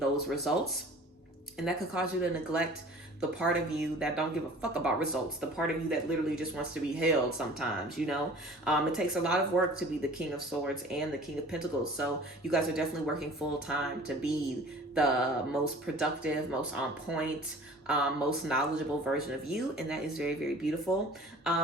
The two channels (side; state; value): both; normal; correlation 0.46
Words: results. And that could cause you to neglect the part of you that don't give a fuck about results, the part of you that literally just wants to be held sometimes, It takes a lot of work to be the King of Swords and the King of Pentacles. So you guys are definitely working full time to be the most productive, most on point, most knowledgeable version of you. And that is very, very beautiful.